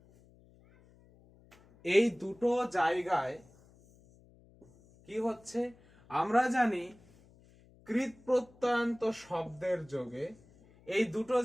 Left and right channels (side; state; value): left; noise; hum, 27 dB below the sound